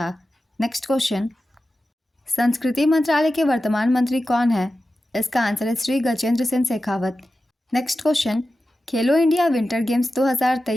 नेक्स्ट क्वेश्चन, संस्कृति मंत्रालय के वर्तमान मंत्री कौन है? इसका आंसर है श्री गजेंद्र सिंह शेखावत। नेक्स्ट क्वेश्चन, खेलो इंडिया विंटर गेम्स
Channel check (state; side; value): normal; both; correlation 0.93